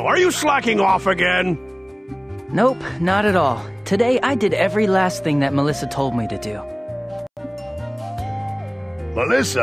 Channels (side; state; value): both; identical; correlation 1.00